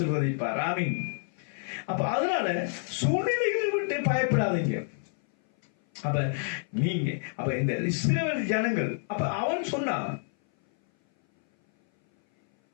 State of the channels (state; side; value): silent; right; 58 dB below the other